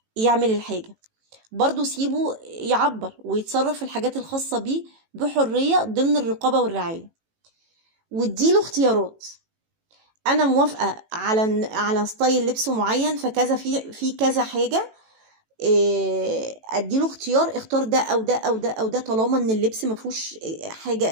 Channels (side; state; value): left; late; 18 ms